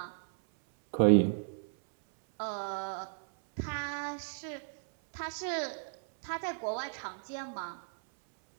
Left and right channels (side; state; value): left; silent; 55 dB below the other